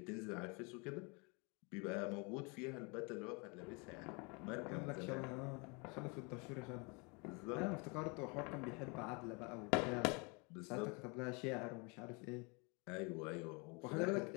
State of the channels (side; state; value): right; quieter; 31.0 dB